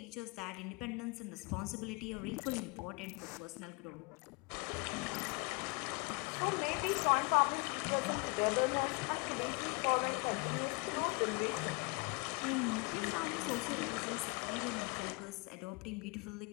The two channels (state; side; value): quieter; right; 29.0 dB